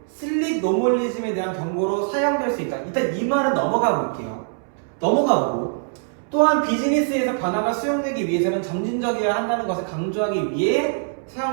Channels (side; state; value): left; silent; 64 dB below the other